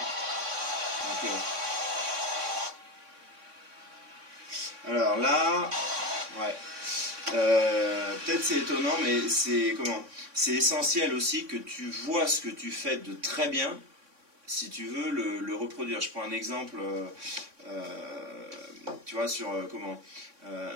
ok. Alors là, ouais. Peut-être c'est étonnant, mais c'est comment? C'est essentiel aussi que tu vois ce que tu fais de très bien, si tu veux le reproduire. Je prends un exemple, tu vois, sur comment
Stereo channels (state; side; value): late; left; 3.6 ms